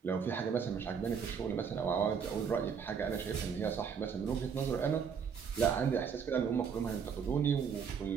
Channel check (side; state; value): left; quieter; 6.7 dB